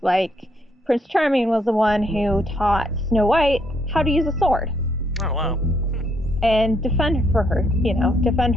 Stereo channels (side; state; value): both; normal; correlation 0.72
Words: like Prince Charming was the one who taught Snow White how to use a sword. Oh wow. And defend